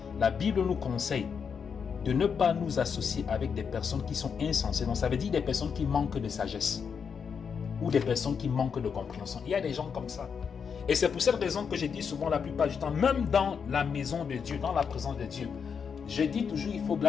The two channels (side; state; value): right; quieter; 6.5 dB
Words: La Bible nous conseille de ne pas nous associer avec des personnes qui sont insensées. Donc ça veut dire des personnes qui manquent de sagesse ou des personnes qui manquent de compréhension. Il y a des gens comme ça. Et c'est pour cette raison que je dis souvent la plupart du temps, même dans la maison de Dieu, dans la présence de Dieu, je dis toujours,